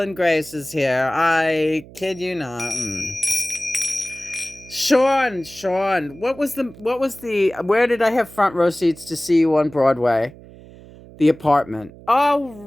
Grace is here. I kid you not. Sean, where did I have front row seats to see you on Broadway? The Apartment. Oh,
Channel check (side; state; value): right; noise; hum, 20 dB below the sound